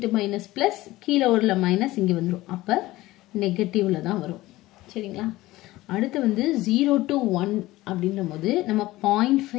மைனஸ் பிளஸ், கீழே உள்ள மைனஸ் இங்க வந்துடும். அப்ப நெகட்டிவ்ல தான் வரும். சரிங்களா? அடுத்து வந்து 0 to 1 அப்படின்ற போது நம்ம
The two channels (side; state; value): right; quieter; 17.8 dB